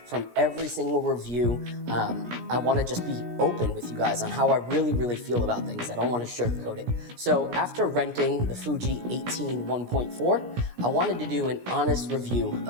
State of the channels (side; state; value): left; late; 17 ms